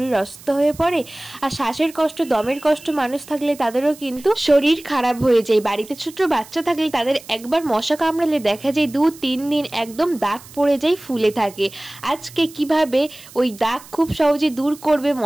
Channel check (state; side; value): noise; right; hiss, 20 dB below the sound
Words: অসুস্থ হয়ে পড়ে, আর শ্বাসের কষ্ট, দমের কষ্ট মানুষ থাকলে তাদেরও কিন্তু শরীর খারাপ হয়ে যায়। বাড়িতে ছোট বাচ্চা থাকলে তাদের একবার মশা কামড়ালে দেখা যায় 2-3 দিন একদম দাগ পড়ে যায়, ফুলে থাকে। আজকে কিভাবে ওই দাগ খুব সহজে দূর করবে,